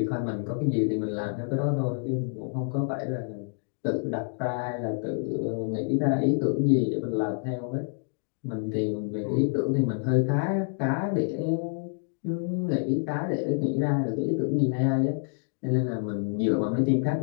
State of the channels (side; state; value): right; silent; 60 dB below the other